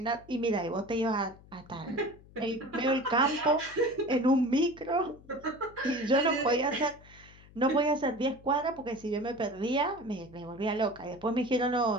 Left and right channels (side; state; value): left; noise; hum, 23 dB below the sound